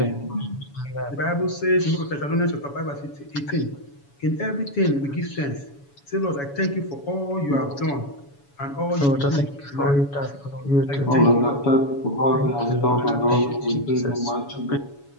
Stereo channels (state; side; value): late; right; 7.1 ms